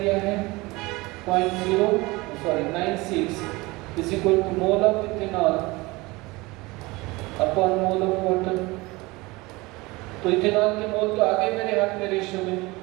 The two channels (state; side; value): quieter; left; 22.6 dB